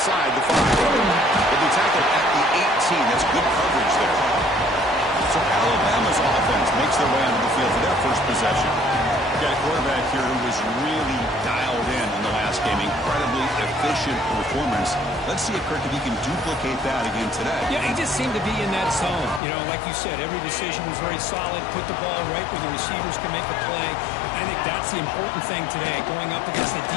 the 5. They'll be tackled at the 18. That's good coverage there. So Alabama's offense makes their way onto the field for their first possession. Got a quarterback here who was really dialed in the last game. Incredibly efficient performance. Let's see if Kirk, if he can duplicate that again today. Yeah, he just seemed to be in that zone. You know, like you said, every decision was very solid. Put the ball right where the receivers can make a play. I think that's the important thing today. Going up against a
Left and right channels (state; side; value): drops out; right; at 19.4 s